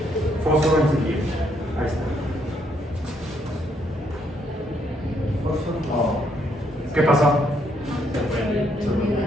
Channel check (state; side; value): normal; both; correlation 0.72